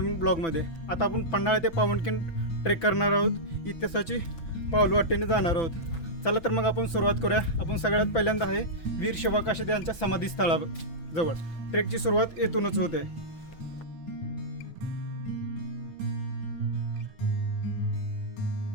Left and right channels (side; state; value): right; late; 6.0 ms